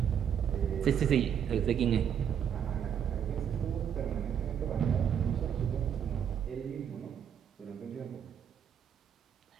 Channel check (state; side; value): quieter; left; 8.5 dB